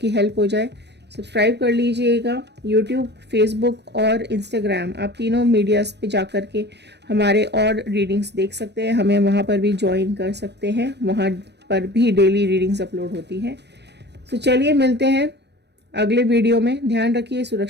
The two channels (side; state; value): left; late; 0.50 ms